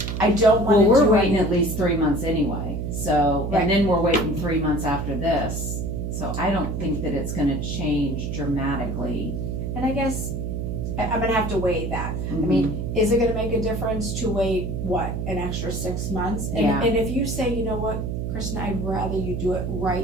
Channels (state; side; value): noise; right; hum, 3 dB below the sound